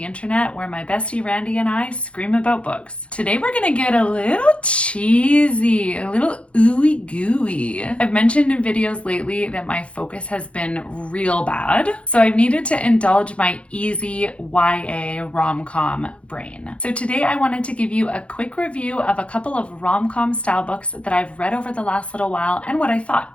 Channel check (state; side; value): late; right; 0.061 ms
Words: internet where my bestie Randy and I scream about books. Today we're gonna get a little cheesy, a little ooey gooey. I've mentioned in videos lately that my focus has been real bad, so I've needed to indulge my easy YA rom-com brain. So today I wanted to give you a quick review of a couple of rom-com style books that I've read over the last little while and what I thought.